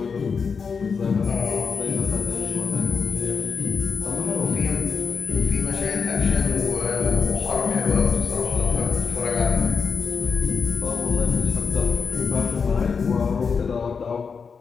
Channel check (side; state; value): right; quieter; 5.6 dB